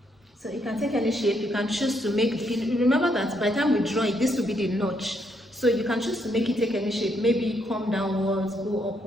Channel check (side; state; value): both; normal; correlation 0.75